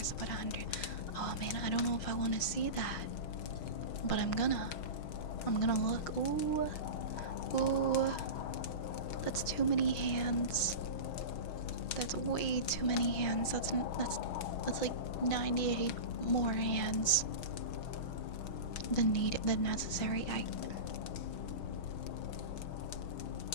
about 100. Oh man, I don't know if I want to see that, but I'm gonna look. Ooh, ooh, that's too many hands. That's way too many hands. That's like 98 more hands than necessary.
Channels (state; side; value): late; right; 6.3 ms